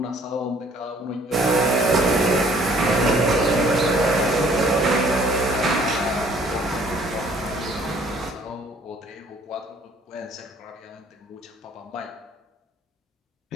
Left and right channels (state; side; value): normal; both; correlation 0.59